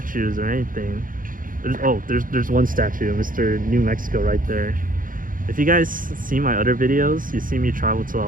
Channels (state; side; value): late; left; 0.40 ms